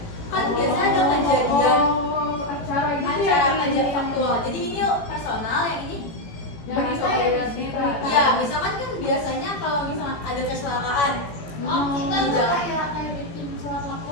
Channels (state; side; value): late; right; 18 ms